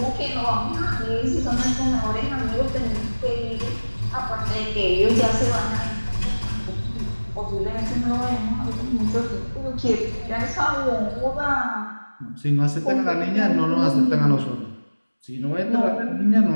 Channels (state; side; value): inverted; both; correlation -1.00